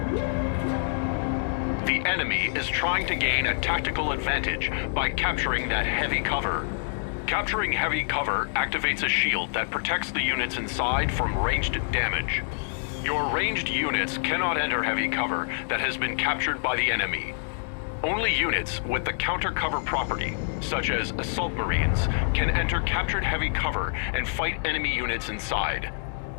The enemy is trying to gain a tactical advantage by capturing that heavy cover. Capturing heavy cover activates a shield that protects the units inside from ranged damage. Your ranged units cannot enter heavy cover that has been captured by the enemy. Only units with the counter cover property, such as assault marines, can enter captured heavy cover and fight enemy units inside.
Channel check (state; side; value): silent; right; digital silence